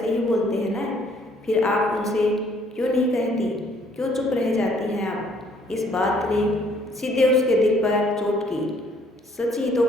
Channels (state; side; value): normal; both; correlation 0.62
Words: ही बोलते हैं ना। फिर आप उनसे क्यों नहीं कहती, क्यों चुप रह जाती हैं आप? इस बात ने सीधे उसके दिल पर चोट की। सच ही तो